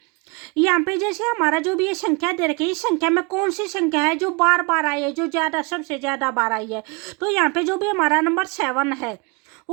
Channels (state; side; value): quieter; left; 29.8 dB